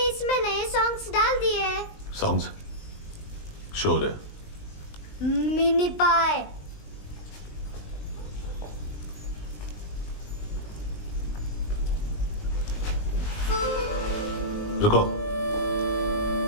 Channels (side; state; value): right; late; 19 ms